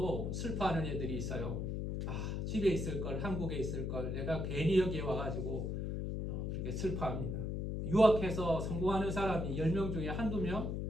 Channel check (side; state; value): left; noise; hum, 2 dB below the sound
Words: 슬퍼하는 애들이 있어요. 집에 있을 걸, 한국에 있을 걸, 내가 괜히 여기에 와가지고 그렇게 슬퍼합니다. 유학해서 성공하는 사람이 10명 중에 한두